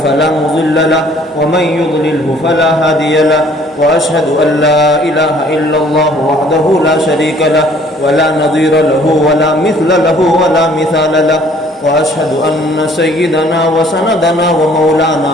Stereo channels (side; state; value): both; normal; correlation 0.57